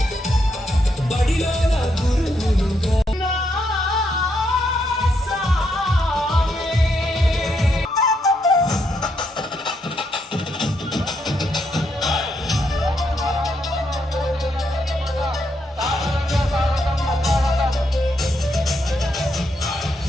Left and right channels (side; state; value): both; normal; correlation 0.78